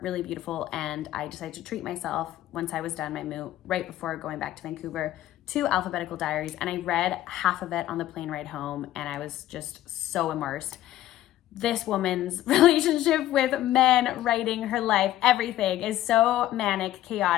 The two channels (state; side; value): quieter; right; 13.9 dB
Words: really beautiful. And I decided to treat myself once I was done my moot, right before going back to Vancouver, to Alphabetical Diaries. And I read half of it on the plane ride home, and I was just so immersed. This woman's relationship with men, writing, her life, everything is so manic,